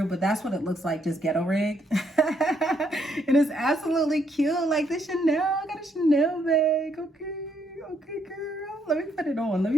But that's what it looks like, just ghetto rigged. And it's absolutely cute. Like the Chanel, I got a Chanel bag. Okay, girl. Let me put it on. Let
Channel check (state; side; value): normal; both; correlation 0.73